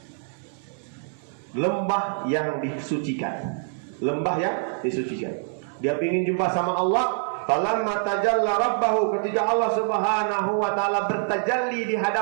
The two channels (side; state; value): left; silent; digital silence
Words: lembah yang disucikan. Lembah yang disucikan. Dia ingin jumpa sama Allah. Falamma tajalla rabbahu, ketika Allah Subhanahu wa taala bertajalli di